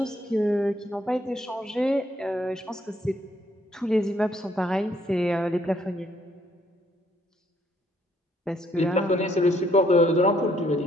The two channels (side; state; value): both; normal; correlation 0.68